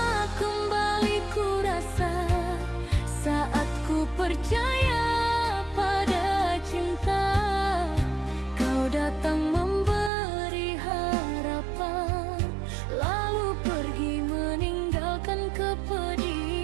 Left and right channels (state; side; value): drops out; left; at 10.1 s